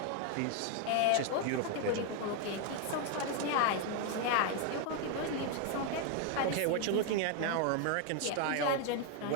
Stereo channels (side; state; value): both; different; correlation 0.01